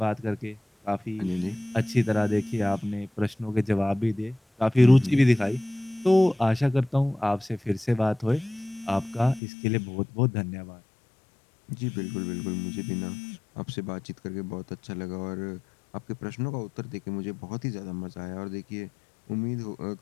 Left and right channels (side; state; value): right; drops out; at 9.4 s